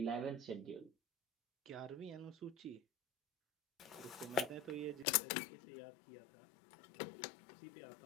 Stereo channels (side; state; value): right; drops out; at 5.1 s